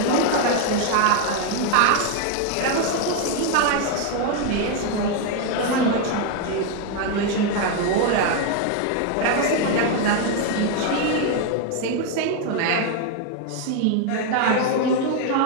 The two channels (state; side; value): different; both; correlation 0.01